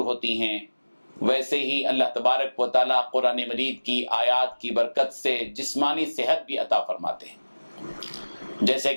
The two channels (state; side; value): inverted; both; correlation -1.00